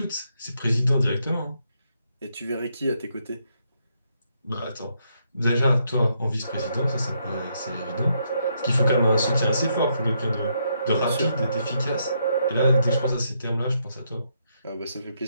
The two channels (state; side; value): inverted; both; correlation -0.76